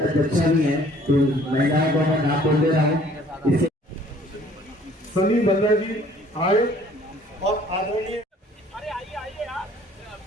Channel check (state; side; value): normal; both; correlation 0.56